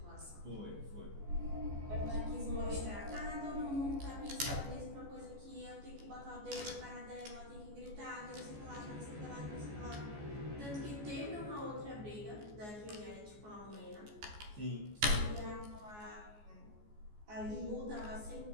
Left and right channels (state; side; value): late; left; 14 ms